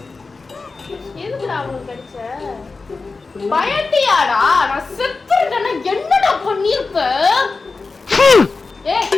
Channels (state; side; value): quieter; right; 4.1 dB